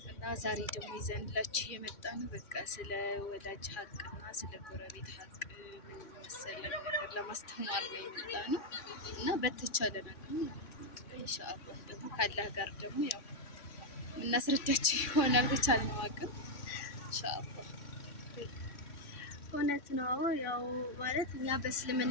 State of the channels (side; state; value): right; late; 3.6 ms